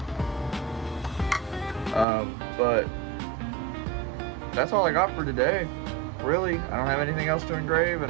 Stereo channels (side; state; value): left; drops out; at 2.1 s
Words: But that's all I got for today. Really, I don't have anything else to engrave, and